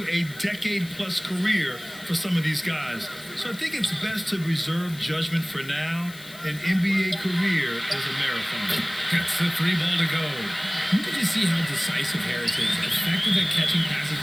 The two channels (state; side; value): noise; left; hiss, 18 dB below the sound